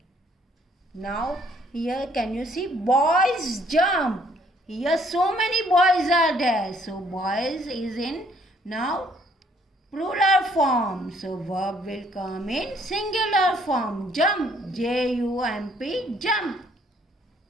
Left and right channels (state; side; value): normal; both; correlation 0.64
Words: Now here can you see boys jump. Here so many boys are there. So boys is in now plural form. So verb will come in singular form. Jump, J-U-M-P, jump.